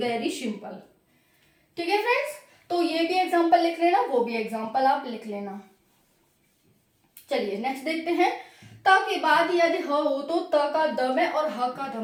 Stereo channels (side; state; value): both; identical; correlation 1.00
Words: सिंपल, ठीक है फ्रेंड्स। तो ये भी एग्जांपल लिख लेना, वो भी एग्जांपल आप लिख लेना। चलिए नेक्स्ट देखते हैं, त के बाद यदि ह हो तो त का द में और ह का ध